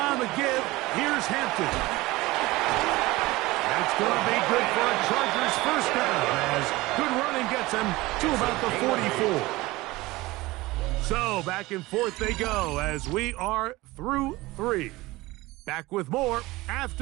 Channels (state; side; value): quieter; left; 20.1 dB